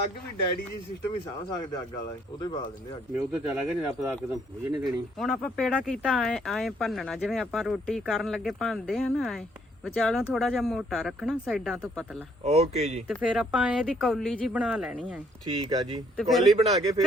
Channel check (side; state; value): both; normal; correlation 0.66